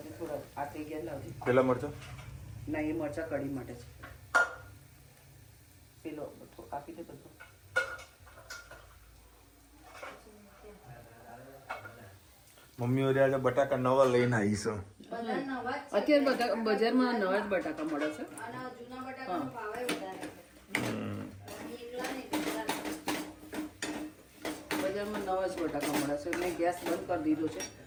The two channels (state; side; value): identical; both; correlation 1.00